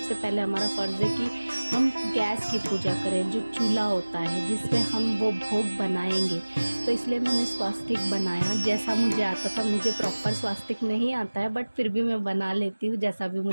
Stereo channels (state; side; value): inverted; both; correlation -1.00